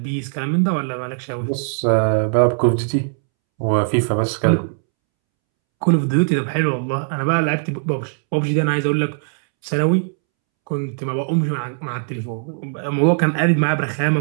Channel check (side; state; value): left; silent; 66 dB below the other